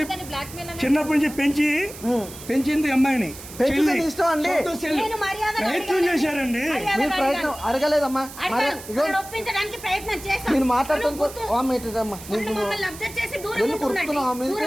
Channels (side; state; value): right; noise; hiss, 15 dB below the sound